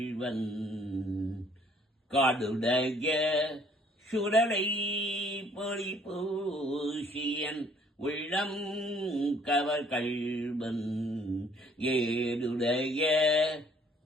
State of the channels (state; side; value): normal; both; correlation 0.60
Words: காடுடைய சுடலை பொடி பூசியன் உள்ளம் கவகள்வன் ஏடுடைய